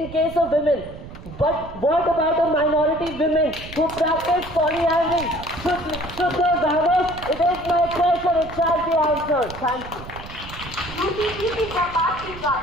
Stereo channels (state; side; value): noise; right; rumble, 14 dB below the sound